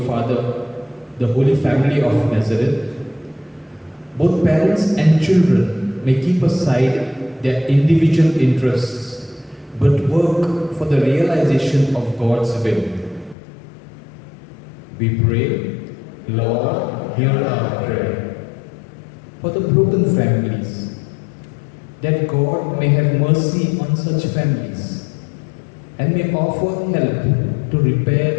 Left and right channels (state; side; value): drops out; right; at 13.4 s